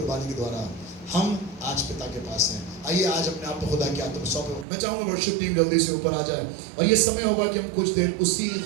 के द्वारा हम आज पिता के पास हैं। आइए आज अपने आप को खुदा के हाथों में सौंपे। मैं चाहूंगा वर्शिप टीम जल्दी से ऊपर आ जाए और ये समय होगा कि हम कुछ देर उसी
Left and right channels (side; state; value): left; drops out; at 4.7 s